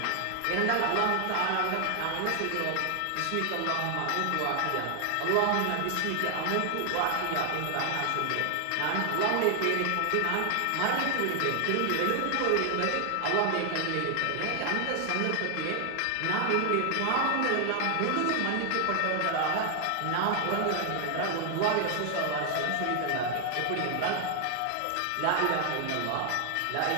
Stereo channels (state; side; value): different; both; correlation 0.00